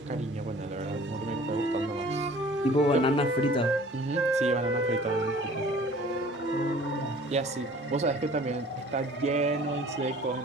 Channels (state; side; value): normal; both; correlation 0.49